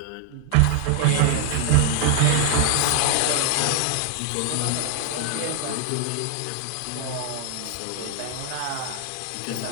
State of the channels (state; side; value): different; both; correlation 0.00